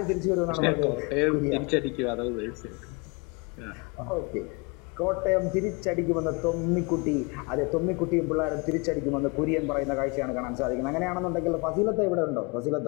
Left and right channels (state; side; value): quieter; right; 29.4 dB